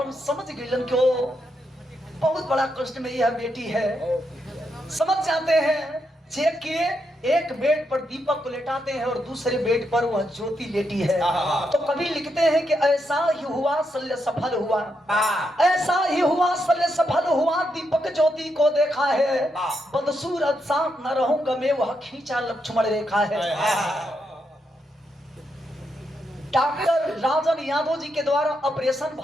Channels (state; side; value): normal; both; correlation 0.81